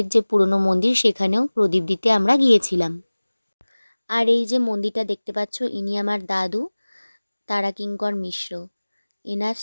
যে পুরনো মন্দির সেখানেও প্রদীপ দিতে আমরা গিয়েছিলাম। আর এই যে মন্দিরটা দেখতে পাচ্ছ, ইনি আমার দাদু তারাকিঙ্কর মিশ্র। এনার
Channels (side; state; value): both; inverted; correlation -1.00